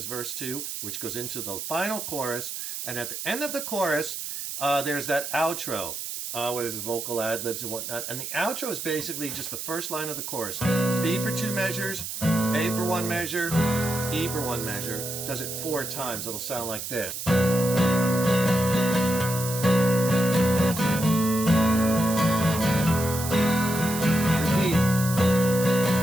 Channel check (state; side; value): noise; right; hiss, 6 dB below the sound